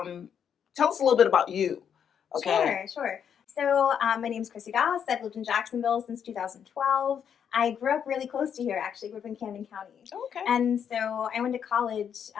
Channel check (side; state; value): right; quieter; 8.1 dB